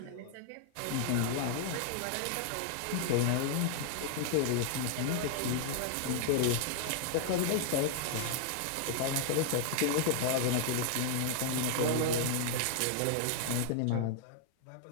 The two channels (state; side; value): different; both; correlation -0.01